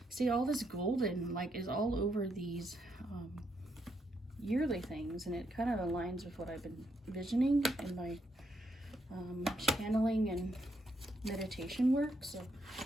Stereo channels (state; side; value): normal; both; correlation 0.77